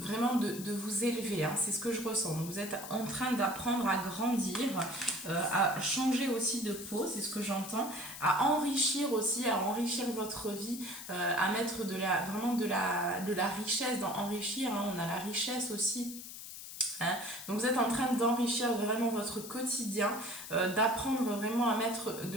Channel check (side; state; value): left; noise; hiss, 11 dB below the sound